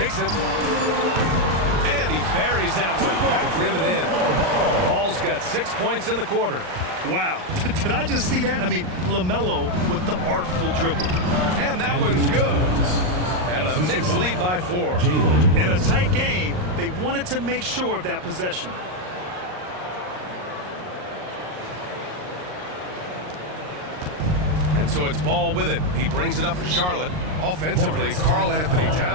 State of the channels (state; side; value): late; left; 39 ms